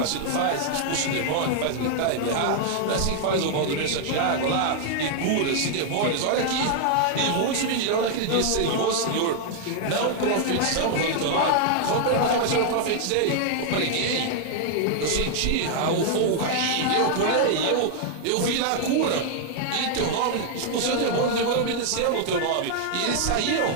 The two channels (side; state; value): both; different; correlation 0.00